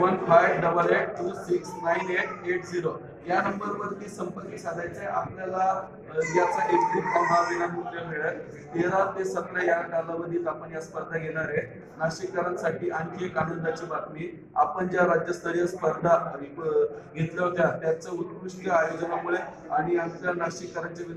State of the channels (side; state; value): both; identical; correlation 1.00